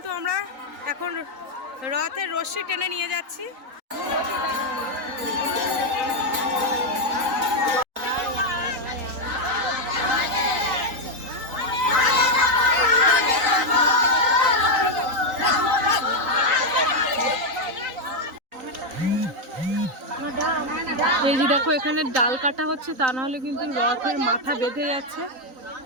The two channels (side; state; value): left; late; 3.9 ms